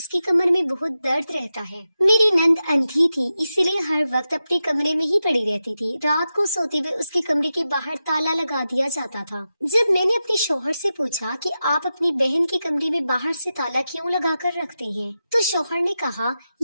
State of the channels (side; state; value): both; inverted; correlation -0.91